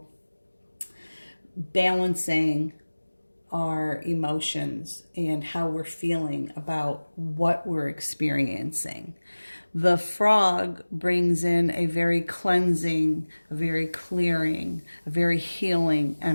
balancing our emotions and how we're feeling about what we're experiencing. The frog brings in a very cleansing, a very clearing, a very healing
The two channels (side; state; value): both; inverted; correlation -1.00